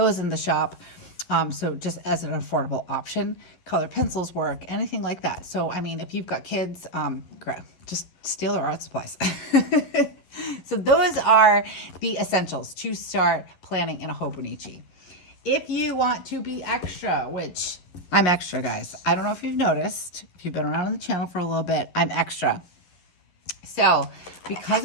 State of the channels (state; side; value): late; right; 11 ms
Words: in the shop. So just as an affordable option, colored pencils work, anything like that. So, I mean, if you've got kids, just steal their art supplies. So those are the essentials to start planning in a Hobonichi. If you want to be extra, which I'm extra, guys. I don't know if you've noticed, if you've been around on the channel for a little bit, I'm extra. So